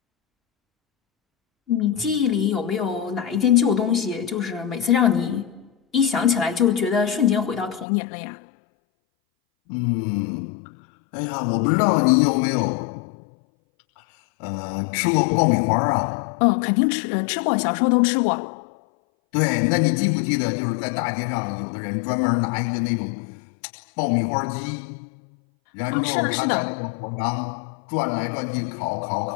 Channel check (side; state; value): right; drops out; at 7.9 s